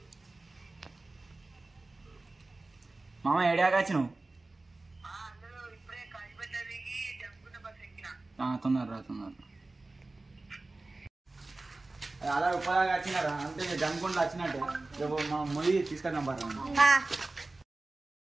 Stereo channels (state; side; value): quieter; left; 3.2 dB